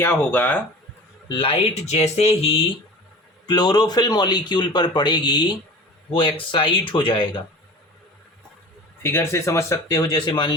होगा, लाइट जैसे ही क्लोरोफिल मॉलिक्यूल पर पड़ेगी वो एक्साइट हो जाएगा. फिगर से समझ सकते हो, जैसे मान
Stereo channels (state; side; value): normal; both; correlation 0.38